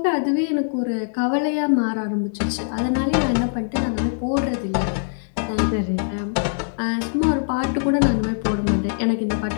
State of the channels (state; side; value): silent; right; 64 dB below the other